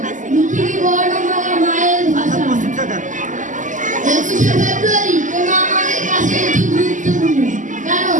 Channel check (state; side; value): late; left; 0.37 ms